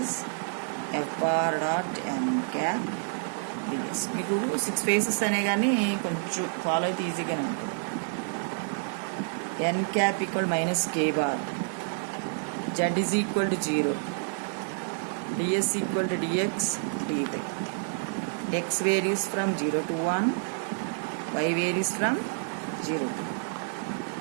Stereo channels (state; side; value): silent; left; digital silence